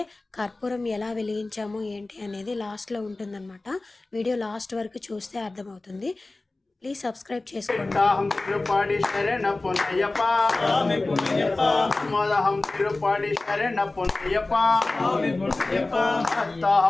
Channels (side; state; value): right; quieter; 3.1 dB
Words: కర్పూరం ఎలా వెలిగించాము ఏంటి అనేది లాస్ట్లో ఉంటుందన్నమాట. వీడియో లాస్ట్ వరకు చూస్తే అర్థమవుతుంది. ప్లీజ్ సబ్స్క్రైబ్ చేసుకోండి. తిరుపాడి శరణ పొన్నయ్యప్ప స్వామి పొన్నయ్యప్ప మోదహం తిరుపాడి శరణ పొన్నయ్యప్ప స్వామి పొన్నయ్యప్ప